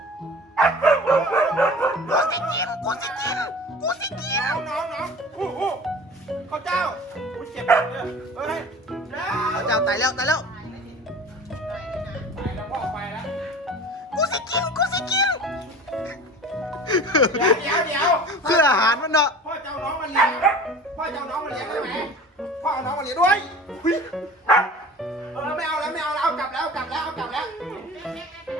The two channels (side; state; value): both; normal; correlation 0.40